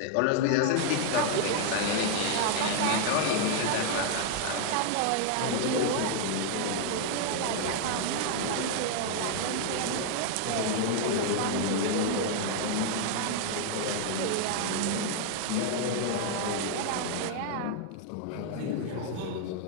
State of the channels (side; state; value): both; different; correlation 0.00